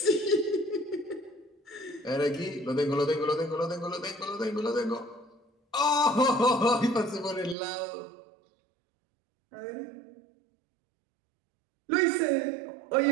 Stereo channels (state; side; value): drops out; left; at 7.6 s